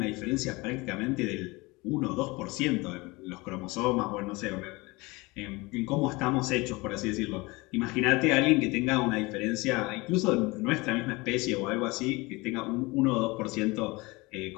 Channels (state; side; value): quieter; right; 23.8 dB